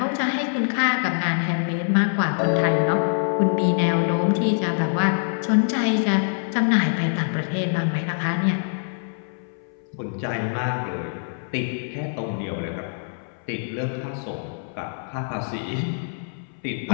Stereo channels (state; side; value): silent; right; 62 dB below the other